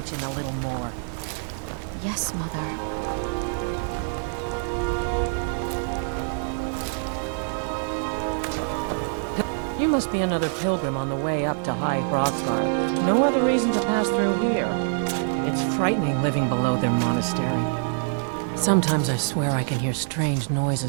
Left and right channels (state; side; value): silent; left; digital silence